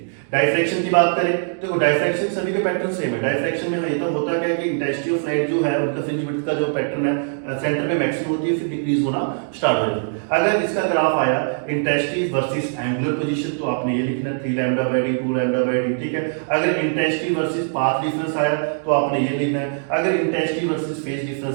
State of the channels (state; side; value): silent; left; digital silence